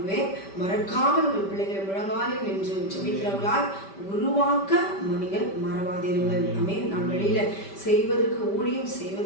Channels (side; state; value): right; late; 5.1 ms